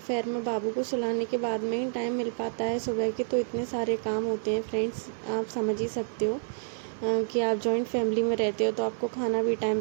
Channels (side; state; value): left; silent; 59 dB below the other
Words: मैं बाबू को सुलाने के बाद में ही टाइम मिल पाता है। सुबह के तो इतने सारे काम होते हैं फ्रेंड्स, आप समझ ही सकते हो कि आप जॉइंट फैमिली में रहते हो तो आपको खाना भी टाइम